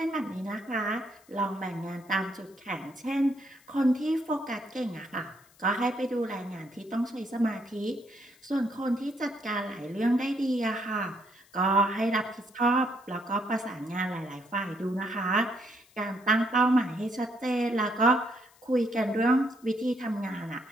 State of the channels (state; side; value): noise; left; hiss, 29 dB below the sound